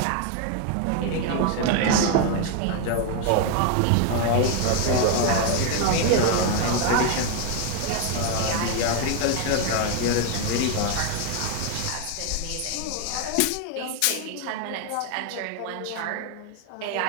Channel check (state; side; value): different; both; correlation 0.01